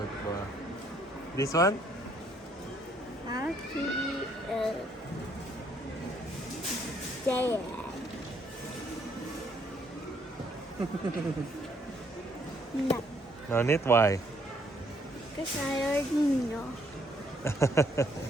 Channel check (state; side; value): normal; both; correlation 0.68